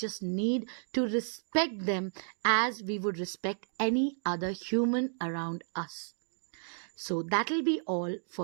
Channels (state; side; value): silent; left; digital silence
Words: need to respect them as we would respect any other human around us. So that'll be all